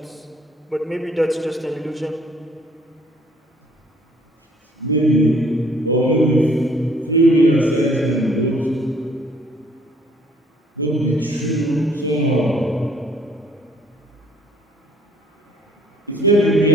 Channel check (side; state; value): both; normal; correlation 0.60